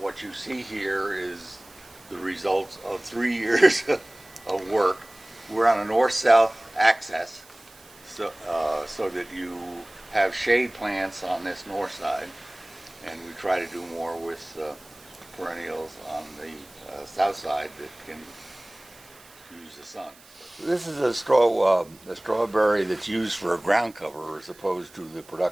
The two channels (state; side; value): noise; right; hiss, 24 dB below the sound